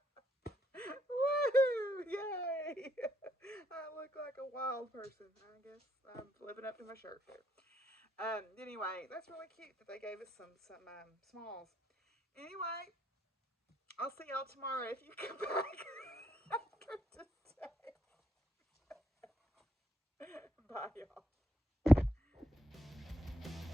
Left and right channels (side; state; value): both; normal; correlation 0.76